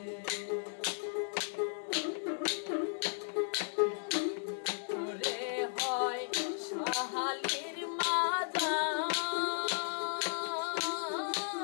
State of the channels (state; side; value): silent; right; digital silence